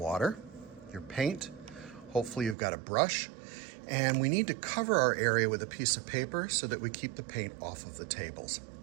your paint, hopefully you've got a brush, and we need to cover our area with a piece of paper so that we keep the paint off of the tables.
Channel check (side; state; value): left; drops out; at 2.6 s